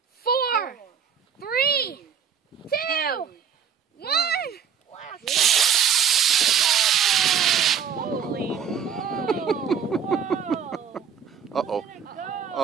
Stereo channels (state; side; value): quieter; left; 7.5 dB